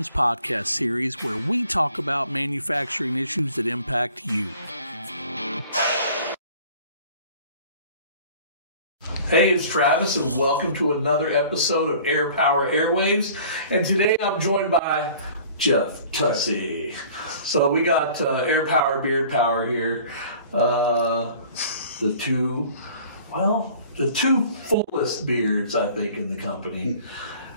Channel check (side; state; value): both; inverted; correlation -0.49